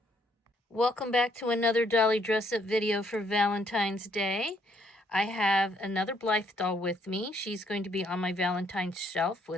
Welcome back to another dolly dress up video for Valentine's Day. I have another Blythe doll with me. She's going to be on my Valentine's shelf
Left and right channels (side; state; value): both; normal; correlation 0.69